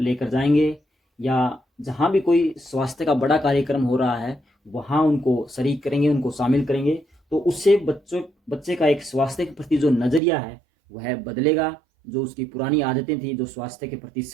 जाएंगे, या जहाँ भी कोई स्वास्थ्य का बड़ा कार्यक्रम हो रहा है वहाँ उनको शरीक करेंगे, उनको शामिल करेंगे। तो उससे बच्चे का एक स्वास्थ्य के प्रति जो नज़रिया है वह बदलेगा। जो उसकी पुरानी आदतें थी जो स्वास्थ्य के प्रति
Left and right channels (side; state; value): left; drops out; at 10.2 s